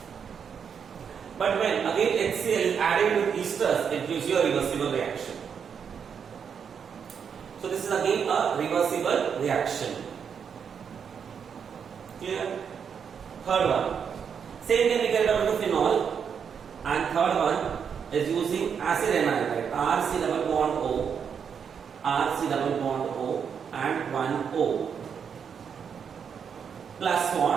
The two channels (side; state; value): left; quieter; 7.1 dB